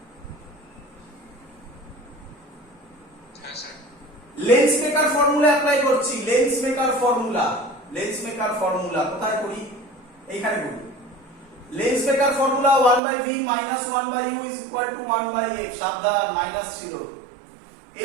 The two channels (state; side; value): drops out; left; at 13.0 s